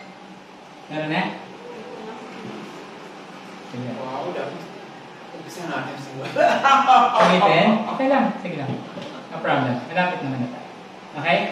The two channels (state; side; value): identical; both; correlation 1.00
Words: Meron na? Sige. Wow, dapat. Umpisa natin siguro. Umitin? Okay lang. Sige lang. No problem. Malapit naman na tayo. Okay?